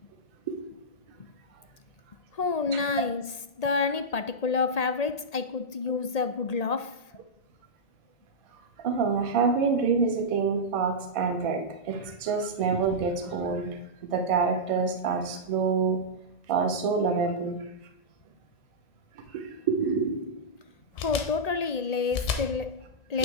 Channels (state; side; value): late; right; 1.8 ms